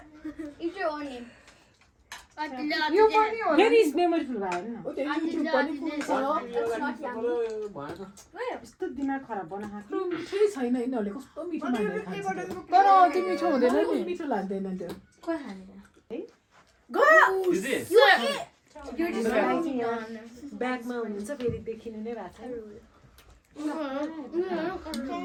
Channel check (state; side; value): identical; both; correlation 1.00